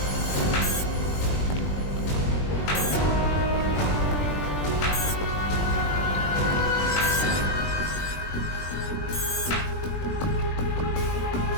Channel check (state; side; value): late; right; 20 ms